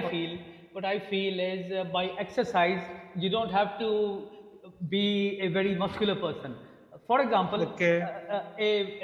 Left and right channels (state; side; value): identical; both; correlation 1.00